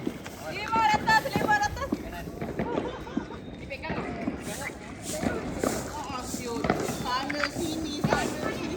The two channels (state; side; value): identical; both; correlation 1.00